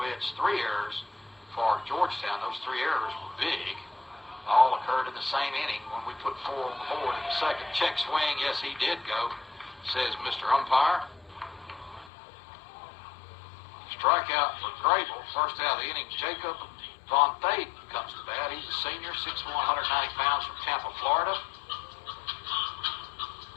hits, 3 errors for Georgetown. Those 3 errors were big. All occurred in the same inning when we put 4 on the board in the second. Check swing, yes, he did go, says Mr. Umpire. Strikeout for Grable. First out of the inning, Jacob Von Thaden comes to bat. He's a senior, 6'1", 190 pounds from Tampa, Florida.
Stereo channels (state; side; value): drops out; right; at 12.1 s